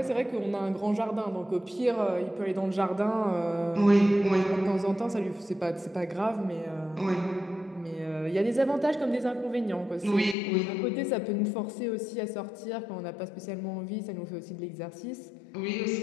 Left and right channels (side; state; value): right; drops out; at 10.4 s